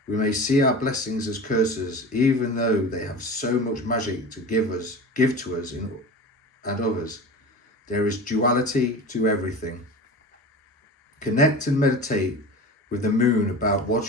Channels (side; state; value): both; normal; correlation 0.33